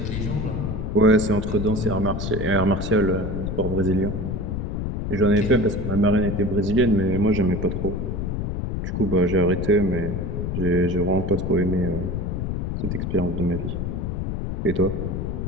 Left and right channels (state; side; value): noise; left; rumble, 2 dB below the sound